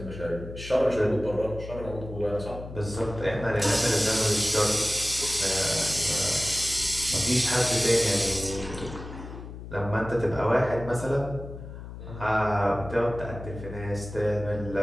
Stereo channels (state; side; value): noise; left; hum, 11 dB below the sound